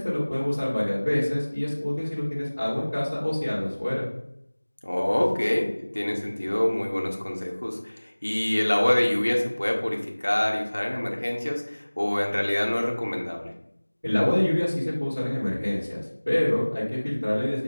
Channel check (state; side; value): inverted; both; correlation -1.00